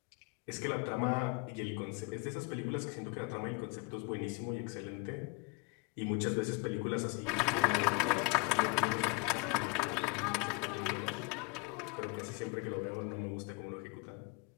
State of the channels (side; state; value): right; quieter; 29.1 dB